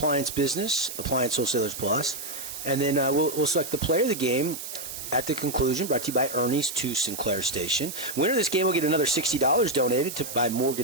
business, Appliance Wholesalers Plus. And then we'll select the player of the game at the conclusion, brought to you by Ernie's 2 Sinclair Station. Winner of this game will get another $60 donated by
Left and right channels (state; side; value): noise; right; hiss, 9 dB below the sound